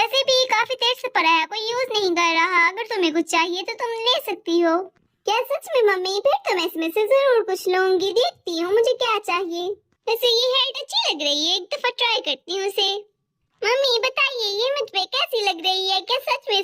भी काफी देर से पड़ा है, कोई यूज नहीं कर रहा। अगर तुम्हें कुछ चाहिए तो तुम ले सकती हो। क्या सच में मम्मी? फिर तो मैं इसमें से जरूर कुछ लूंगी, देखती हूँ मुझे क्या चाहिए। वैसे ये हेड अच्छी लग रही है, एक दफा ट्राई करती हूँ इसे। मम्मी बताइए ये मुझ पे कैसी लग रही है, क्या सच में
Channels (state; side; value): identical; both; correlation 1.00